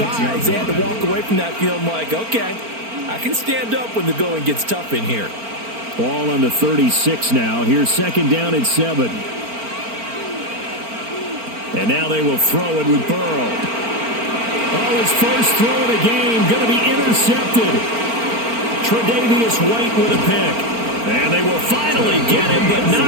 they had to walk away from that field like, okay, I can stand up when the going gets tough in here. Ball on the 36 now. Here's 2nd down and 7. And now they will throw it with Burrow. Oh, his first throw of the game going to be intercepted. Tre'Davious White with a pick. And they will finally get him, but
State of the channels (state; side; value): late; left; 4.4 ms